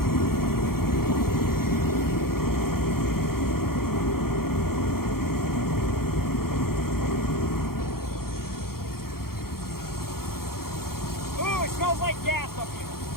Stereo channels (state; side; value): late; right; 0.93 ms